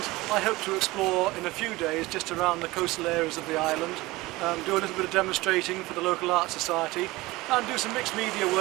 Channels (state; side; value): quieter; left; 20.4 dB